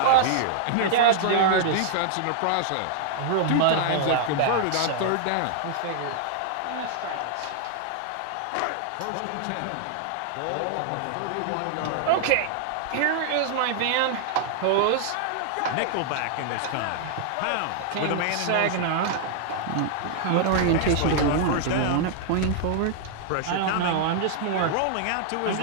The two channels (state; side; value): different; both; correlation -0.01